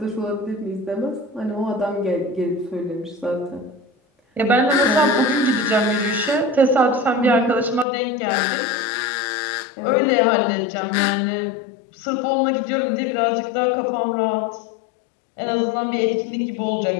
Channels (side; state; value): right; drops out; at 7.9 s